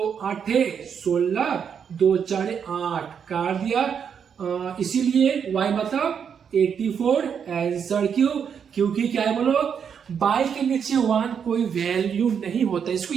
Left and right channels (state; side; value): quieter; left; 7.3 dB